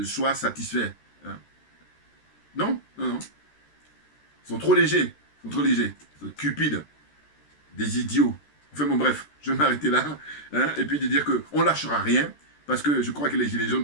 soit satisfait, hein? Non, non, non. Ils sont trop légers, ils sont trop légers, ils sont cupides, des idiots. Enfin bon, bref, je vais m'arrêter là, hein, et puis de dire qu'on ne lâchera rien, parce que je crois que les Gilets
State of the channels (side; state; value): right; late; 13 ms